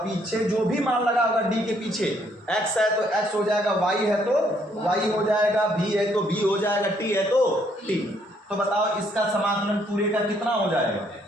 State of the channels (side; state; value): both; normal; correlation 0.68